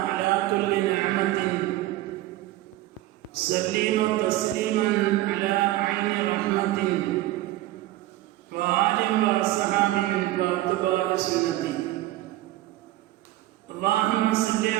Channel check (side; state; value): left; quieter; 16.1 dB